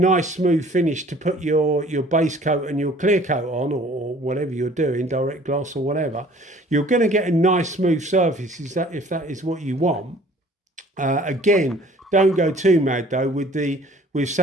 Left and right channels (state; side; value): normal; both; correlation 0.53